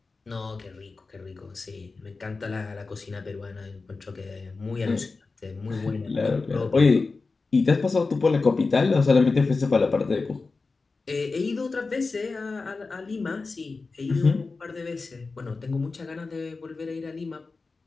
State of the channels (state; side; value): quieter; right; 4.0 dB